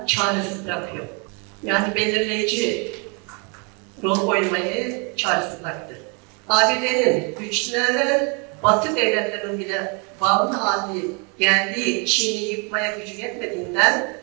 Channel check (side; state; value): left; quieter; 34.0 dB